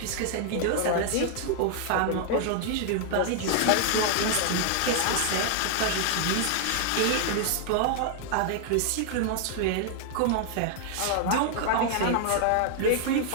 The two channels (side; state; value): both; different; correlation 0.00